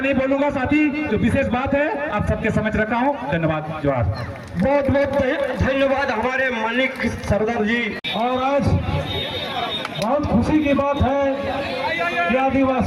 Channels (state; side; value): identical; both; correlation 1.00